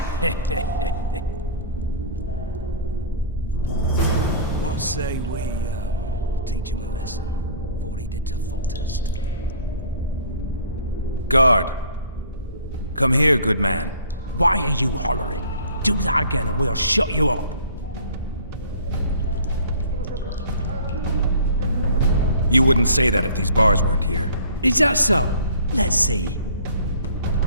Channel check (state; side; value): inverted; both; correlation -0.48